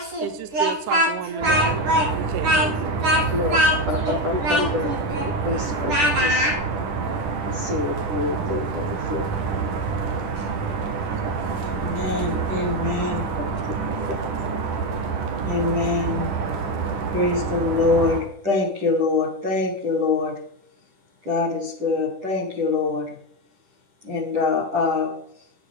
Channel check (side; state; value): left; late; 10 ms